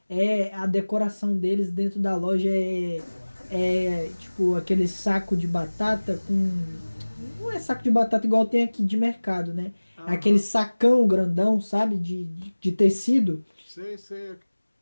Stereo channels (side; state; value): both; inverted; correlation -1.00